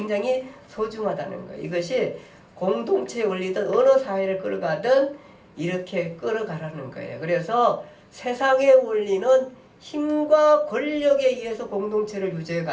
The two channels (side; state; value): both; identical; correlation 1.00